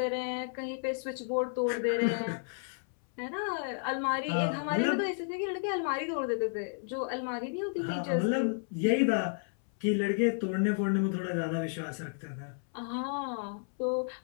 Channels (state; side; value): silent; right; 56 dB below the other